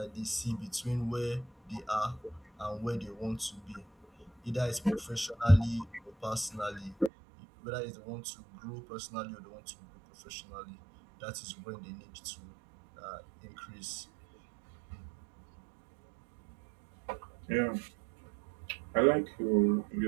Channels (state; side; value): drops out; left; at 7.1 s